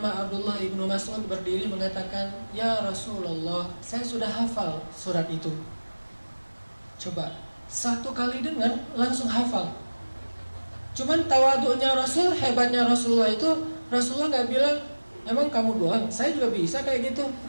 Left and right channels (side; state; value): both; inverted; correlation -1.00